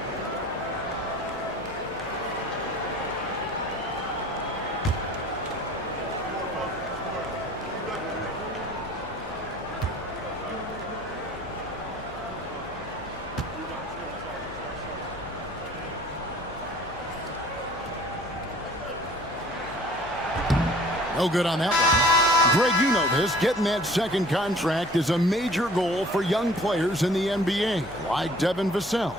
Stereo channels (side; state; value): left; noise; hum, 19 dB below the sound